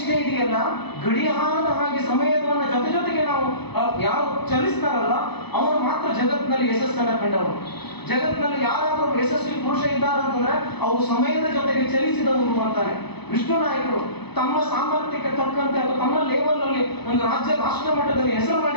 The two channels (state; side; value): late; right; 0.99 ms